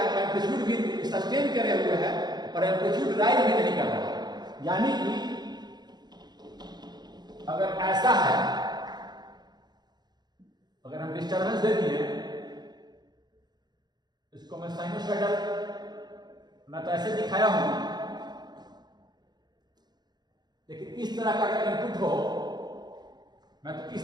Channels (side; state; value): left; late; 0.20 ms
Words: एम्पलीट्यूड भी सस्टेन करे हुए है और एम्पलीट्यूड राइज भी नहीं कर रहा है। यानी कि अगर ऐसा है, अगर हम डिस्टर्बेंस दे दिए, इसको मैं साइनोसॉइडल, मैं तो ऐसे दिखाया हूं, लेकिन इस तरह का अगर इनपुट हो, मैं तो